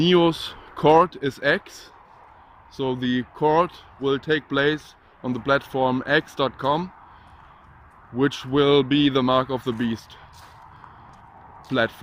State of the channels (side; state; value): both; identical; correlation 1.00